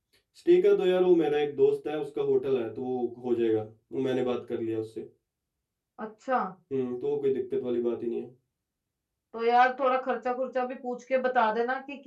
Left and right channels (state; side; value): identical; both; correlation 1.00